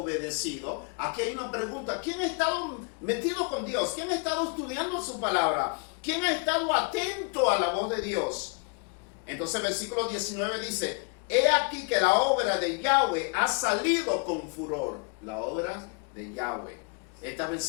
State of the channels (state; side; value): quieter; right; 37.4 dB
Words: Aquí hay una pregunta. ¿Quién ha estado metido con Dios? ¿Quién ha estado estudiando su palabra? ¿Quién ha estado atento a la voz de Dios? Entonces el versículo 19 dice, he aquí que la obra de Yahweh ha salido con furor. La obra de Yahweh. Esta